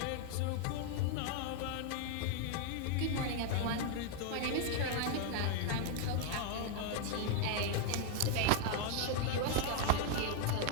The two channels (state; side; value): different; both; correlation 0.00